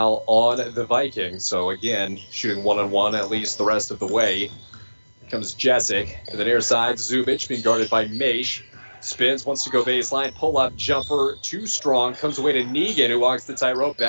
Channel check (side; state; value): both; inverted; correlation -1.00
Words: on the Vikings. So again, shooting one-on-one at least the rest of the way. Here comes Jessic to the near side. Zubich being guarded by Maish. Spins, wants to go baseline. Pull-up jumper, too strong. Comes away to Negan, who walks the tightrope